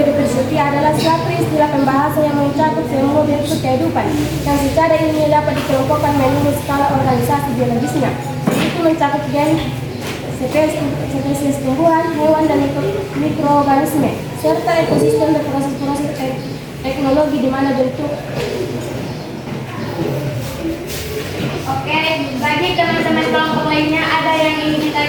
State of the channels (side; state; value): both; identical; correlation 1.00